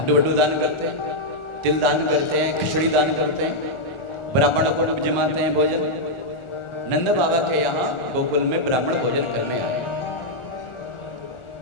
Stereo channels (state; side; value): late; right; 1.4 ms